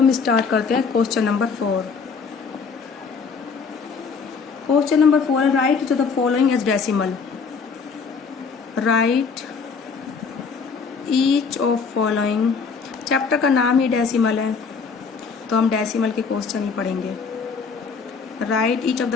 स्टार्ट करते हैं क्वेश्चन नंबर 4। क्वेश्चन नंबर 4 है write to the following as decimal. Write each of following. Chapter का नाम ही डेसिमल है तो हम डेसिमल के क्वेश्चन ही पढ़ेंगे। Write each of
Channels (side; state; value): right; quieter; 5.3 dB